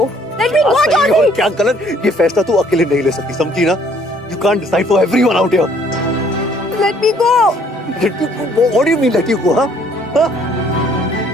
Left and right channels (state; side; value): normal; both; correlation 0.61